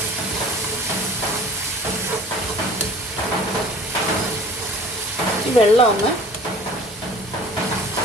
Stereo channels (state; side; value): normal; both; correlation 0.46